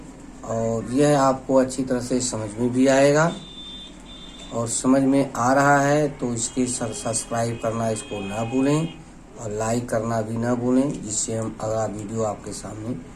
और यह आपको अच्छी तरह से समझ में भी आएगा। और समझ में आ रहा है तो इसके सब्सक्राइब करना इसको ना भूलें और लाइक करना भी ना भूलें, जिससे हम अगला वीडियो आपके सामने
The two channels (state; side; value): identical; both; correlation 1.00